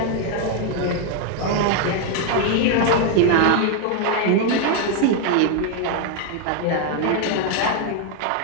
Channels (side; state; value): both; different; correlation 0.00